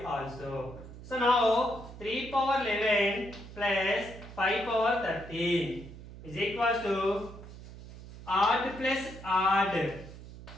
also. So now 3 power 11 plus 5 power 13 is equals to odd plus odd.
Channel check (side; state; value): right; noise; hum, 15 dB below the sound